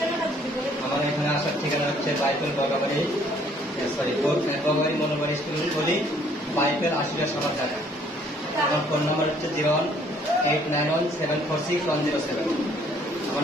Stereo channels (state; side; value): normal; both; correlation 0.62